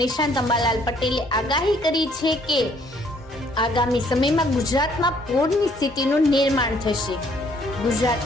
નિષ્ણાત અંબાલાલ પટેલે આગાહી કરી છે કે આગામી સમયમાં ગુજરાતમાં પૂરની સ્થિતિનું નિર્માણ થશે।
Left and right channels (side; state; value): both; normal; correlation 0.64